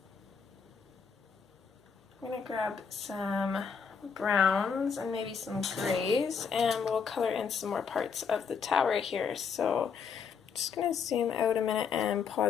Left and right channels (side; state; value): right; quieter; 6.2 dB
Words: going to grab some browns and maybe some grays, and we'll color in some more parts of the tower here. So I'm just going to zoom out a minute and